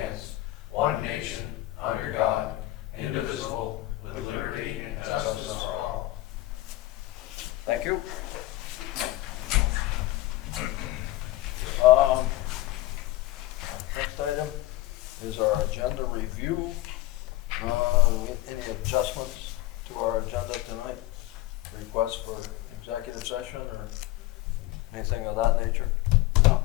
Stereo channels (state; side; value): quieter; right; 17.1 dB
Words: one nation, under God, indivisible, with liberty and justice for all. Thank you. Next item is our agenda review. Any adjustments to our agenda tonight? Requests for executive session or anything of that nature?